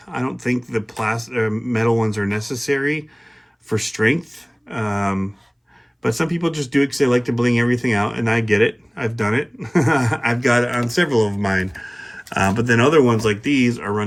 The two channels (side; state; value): both; identical; correlation 1.00